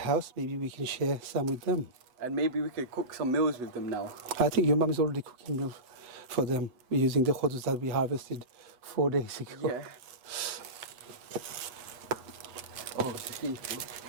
Maybe we can share some with them. And maybe we could cook some meals with them now. I think your mum is already cooking meal for them. We're using the khudus that we harvested 4 days ago. Yeah. Oh, it's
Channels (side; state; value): left; late; 8.1 ms